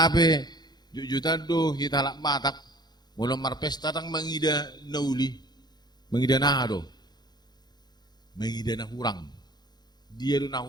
jujutan do hitalak matak, mula marpesta tang mangida nauli, mangida na do, mangida na hurang. Dia do na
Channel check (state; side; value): late; right; 0.20 ms